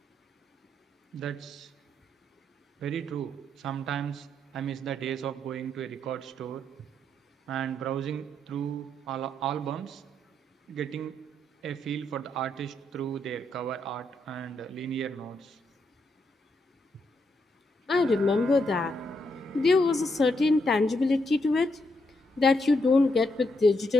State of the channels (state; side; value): normal; both; correlation 0.79